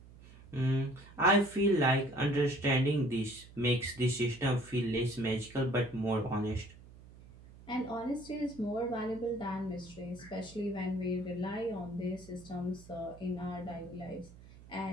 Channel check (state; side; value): noise; right; hum, 20 dB below the sound